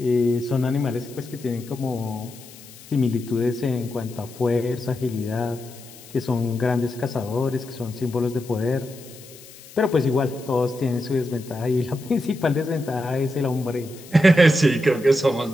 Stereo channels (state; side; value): noise; left; hiss, 20 dB below the sound